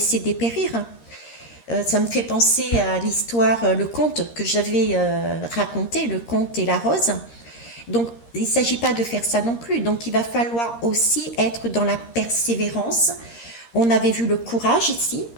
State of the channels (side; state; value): right; late; 13 ms